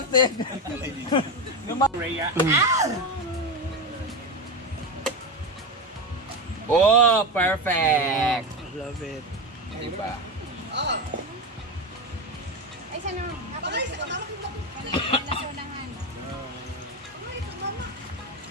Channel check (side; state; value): both; normal; correlation 0.16